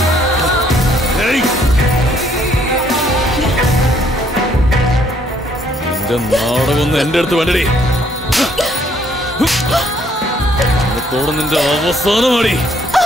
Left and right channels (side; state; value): both; normal; correlation 0.66